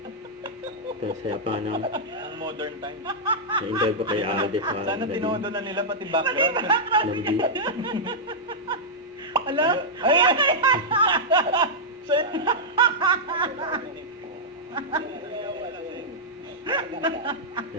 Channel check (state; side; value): normal; both; correlation -0.08